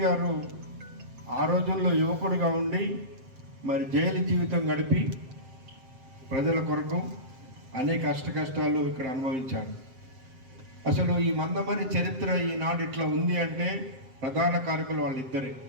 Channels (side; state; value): left; late; 7.7 ms